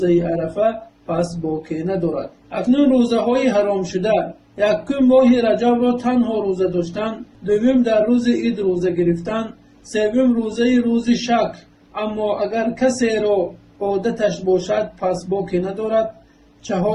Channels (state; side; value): identical; both; correlation 1.00